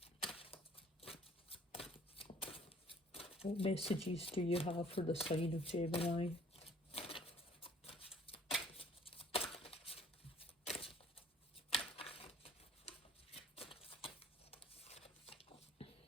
What messages do you have for the sign of Gemini?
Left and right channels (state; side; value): normal; both; correlation 0.55